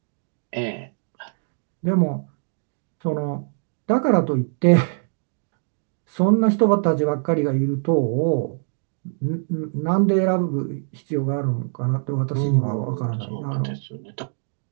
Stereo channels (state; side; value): silent; left; digital silence